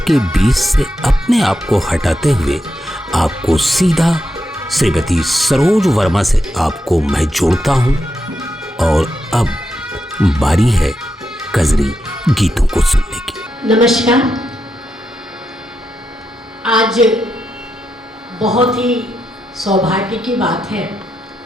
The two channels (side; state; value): both; normal; correlation 0.84